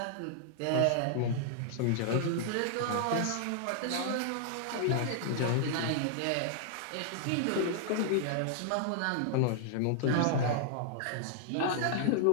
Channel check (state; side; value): different; both; correlation -0.01